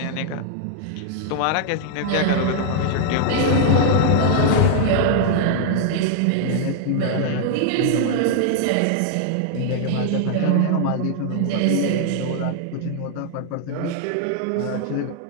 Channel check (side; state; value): both; different; correlation -0.01